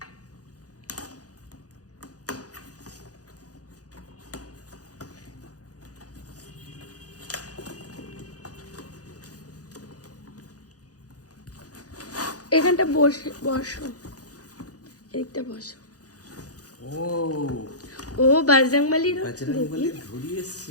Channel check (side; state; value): right; late; 0.67 ms